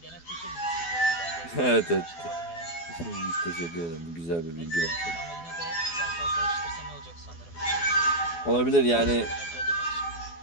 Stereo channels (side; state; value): right; late; 12 ms